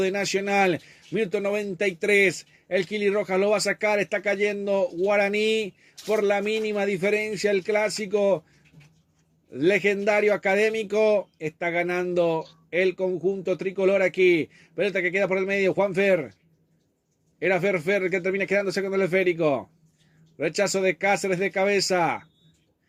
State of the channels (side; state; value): both; identical; correlation 1.00